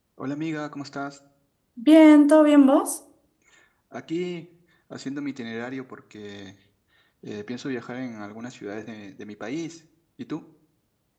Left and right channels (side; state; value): both; identical; correlation 1.00